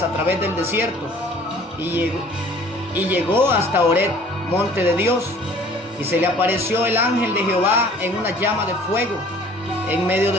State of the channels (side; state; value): both; normal; correlation 0.52